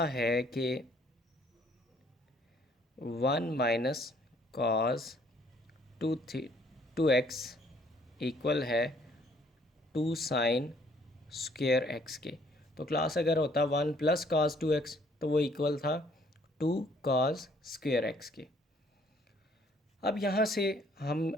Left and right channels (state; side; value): normal; both; correlation 0.63